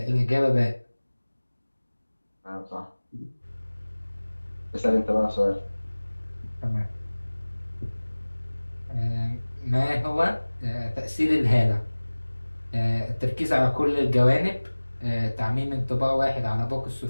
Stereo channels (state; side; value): inverted; both; correlation -1.00